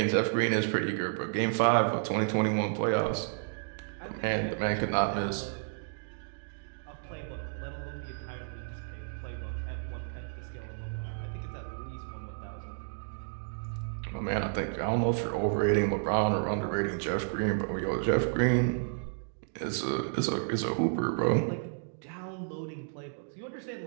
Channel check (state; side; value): silent; left; digital silence